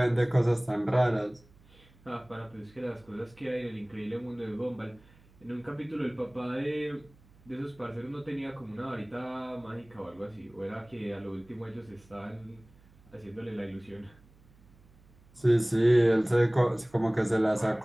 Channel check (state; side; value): noise; right; hum, 27 dB below the sound